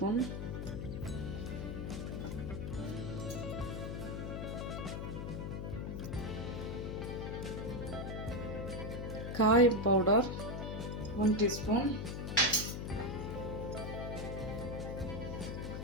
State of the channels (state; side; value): noise; left; hum, 4 dB below the sound